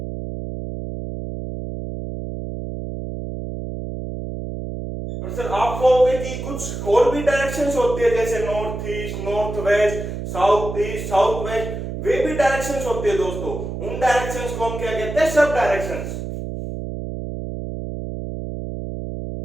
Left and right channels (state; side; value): noise; right; hum, 6 dB below the sound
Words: और सर आप कहोगे कि कुछ और भी डायरेक्शंस होती है, जैसे north east, north west, south east, south west, वे भी डायरेक्शंस होती है दोस्तों। उन डायरेक्शंस को हम क्या कहते हैं? सब डायरेक्शंस।